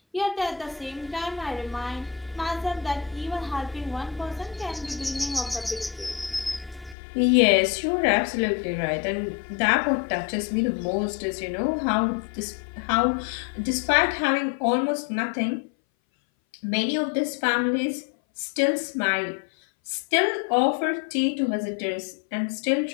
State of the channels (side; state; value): right; drops out; at 7.0 s